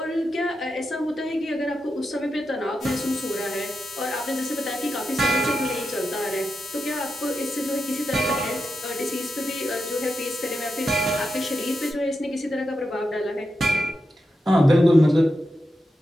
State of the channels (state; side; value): normal; both; correlation 0.88